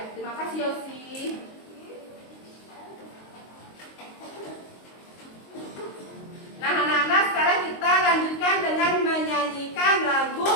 terima kasih Yosi. Nah, anak-anak, sekarang kita lanjutkan dengan menyanyikan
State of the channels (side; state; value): right; late; 22 ms